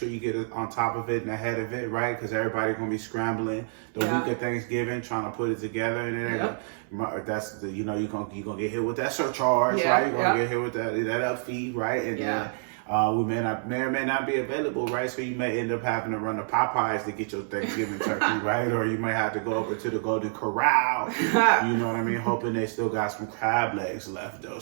you get on top of it and ahead of it, right? Because everybody's going to be scrambling the week of Thanksgiving, trying to put it together. And then that's the, you're going to get hit with that surcharge, right? You're going to get hit with that up fee, right? And then we may or may not be available, right? So you may end up having to run to Popeyes to get your Thanksgiving turkey, right? Or you may have to go over to the Golden Corral, you know what I mean? Hoping they still got some crab legs left, though.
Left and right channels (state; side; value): silent; left; 60 dB below the other